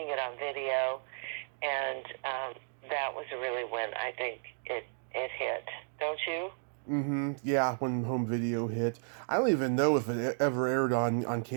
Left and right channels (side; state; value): left; silent; digital silence